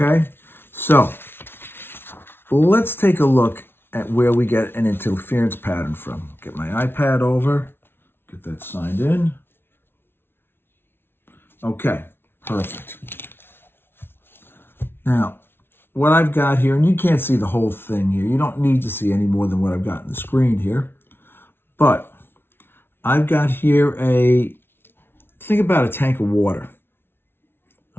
so let's take a look at where we get an interference pattern from. Get my iPad over, get that signed in. Okay, perfect. Now, what I've got here, and you can't see the whole thing here. You don't need to see any more than what I've got on the screen here. But I've got here think about a tank of water,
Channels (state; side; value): late; right; 0.11 ms